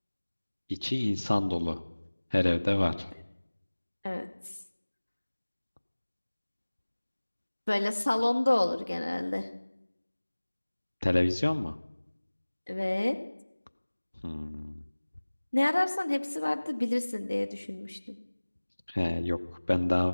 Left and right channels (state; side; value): inverted; both; correlation -1.00